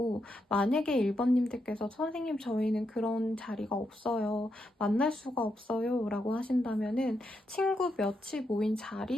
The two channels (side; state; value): both; normal; correlation 0.82